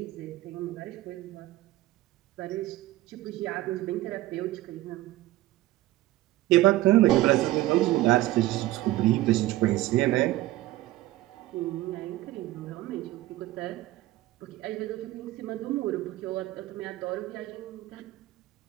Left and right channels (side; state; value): left; quieter; 16.5 dB